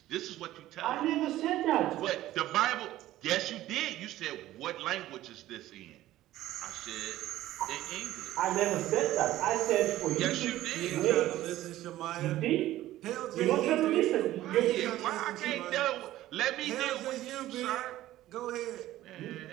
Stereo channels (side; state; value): left; quieter; 14.8 dB